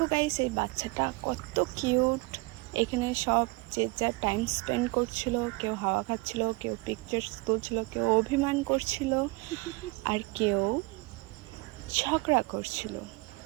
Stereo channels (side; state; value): left; quieter; 25.2 dB